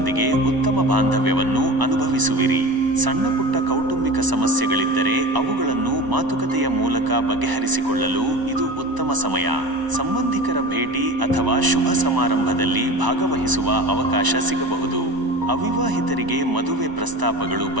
ಉತ್ತಮ ಬಾಂಧವ್ಯವನ್ನು ಅನುಭವಿಸುವಿರಿ. ಸಣ್ಣ ಪುಟ್ಟ ಕೌಟುಂಬಿಕ ಸಮಸ್ಯೆಗಳಿದ್ದರೆ ಅವುಗಳನ್ನು ಮಾತುಕತೆಯ ಮೂಲಕ ಬಗೆಹರಿಸಿಕೊಳ್ಳಲು ಇದು ಉತ್ತಮ ಸಮಯ. ಸಂಬಂಧಿಕರ ಭೇಟಿ ಅಥವಾ ಶುಭ ಸಮಾರಂಭದಲ್ಲಿ ಭಾಗವಹಿಸುವ ಅವಕಾಶ ಸಿಗಬಹುದು. ಅವಿವಾಹಿತರಿಗೆ ಮದುವೆ ಪ್ರಸ್ತಾಪಗಳು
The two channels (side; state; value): left; late; 1.0 ms